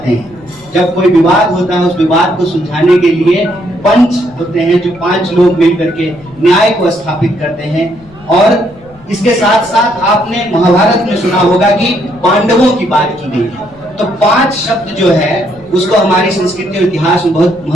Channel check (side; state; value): left; noise; rumble, 25 dB below the sound